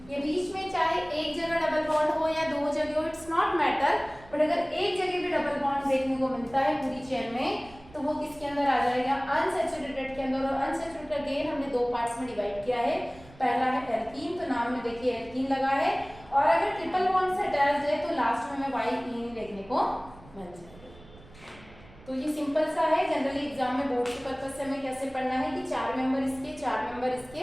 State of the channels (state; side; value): noise; right; rumble, 22 dB below the sound